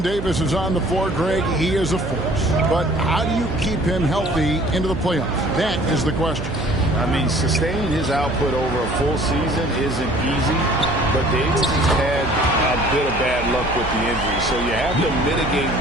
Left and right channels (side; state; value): right; noise; hum, 7 dB below the sound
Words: Davis is on the floor, Greg, he is a force. But how do you keep him healthy into the playoffs? That is the question. I mean, sustaining his output over a full season isn't easy, but Davis has had a bit of bad luck with the injury. So you have to mitigate